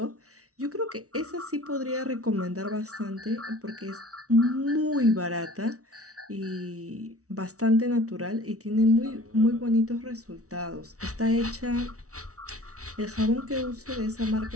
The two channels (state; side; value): late; left; 0.65 ms